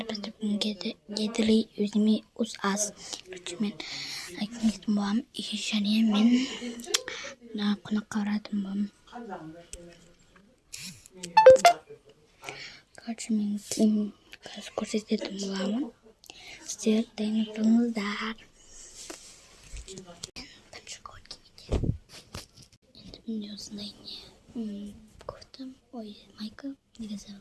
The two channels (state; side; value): identical; both; correlation 1.00